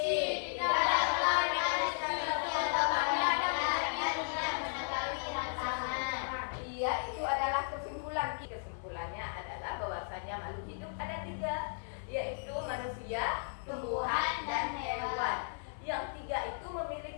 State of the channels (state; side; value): silent; right; 54 dB below the other